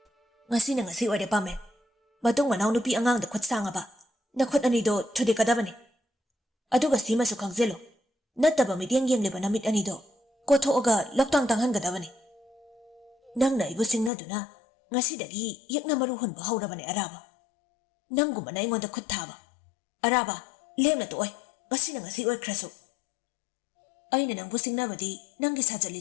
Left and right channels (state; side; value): drops out; right; at 14.1 s